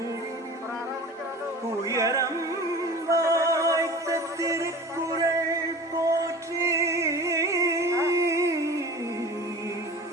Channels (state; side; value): normal; both; correlation 0.38